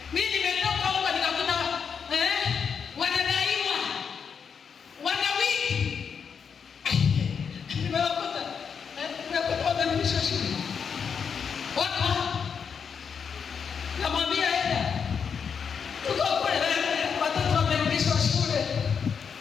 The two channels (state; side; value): quieter; right; 6.6 dB